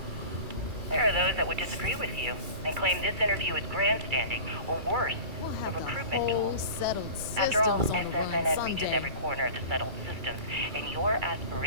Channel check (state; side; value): late; left; 2.3 ms